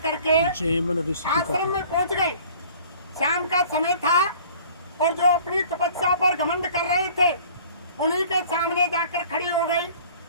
आश्रम में पहुंच गई। शाम का समय था और जो अपनी तपस्या पर घमंड कर रहे थे उन्हीं के सामने जाकर खड़ी हो गई।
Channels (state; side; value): inverted; both; correlation -0.50